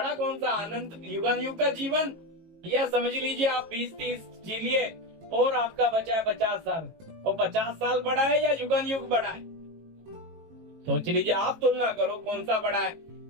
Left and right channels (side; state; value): left; late; 18 ms